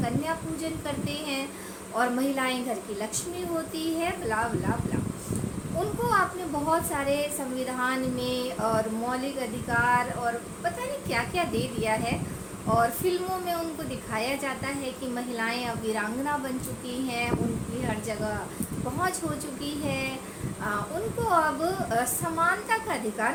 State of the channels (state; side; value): identical; both; correlation 1.00